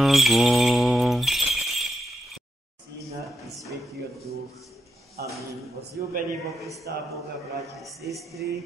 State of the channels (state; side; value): normal; both; correlation 0.83